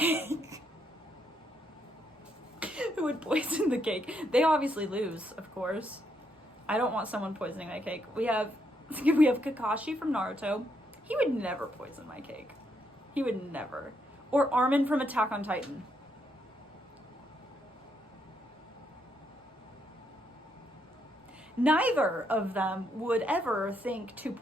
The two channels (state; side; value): normal; both; correlation 0.76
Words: Who would poison the cake? They obviously lose, of course. I don't want someone poisoning my cake. We have We have Kakashi from Naruto. He would never poison my cake. He would never. Or Armin from Attack on Titan. Neither of them would ever think to